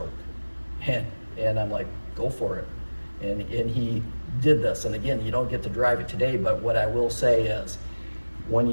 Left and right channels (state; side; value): inverted; both; correlation -1.00